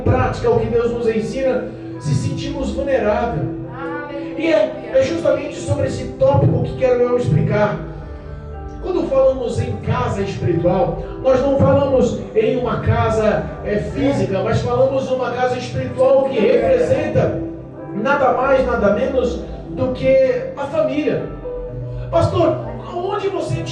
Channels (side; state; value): both; identical; correlation 1.00